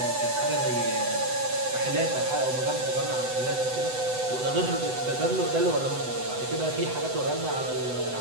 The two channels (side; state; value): left; late; 7.9 ms